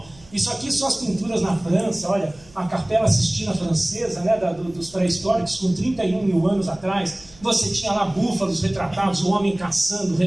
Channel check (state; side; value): noise; right; hum, 26 dB below the sound